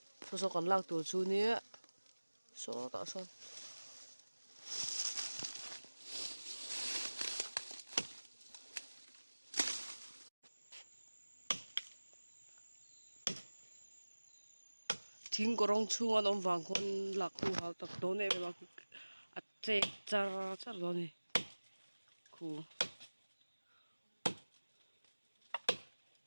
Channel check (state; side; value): inverted; both; correlation -1.00